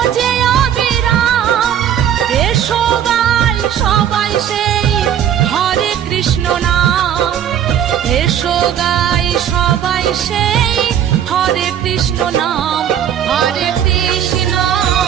অবিরাম। এসো গাই সবাই সেই হরে কৃষ্ণ নাম, এসো গাই সবাই সেই হরে কৃষ্ণ নাম। হরে কৃষ্ণ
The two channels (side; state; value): left; quieter; 9.8 dB